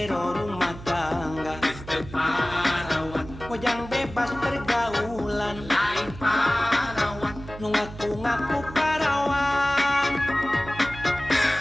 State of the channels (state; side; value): noise; right; hum, 14 dB below the sound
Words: rumah tangga parawan, Mojang bebas pergaulan lain parawan, Nu ngaku-ngaku parawan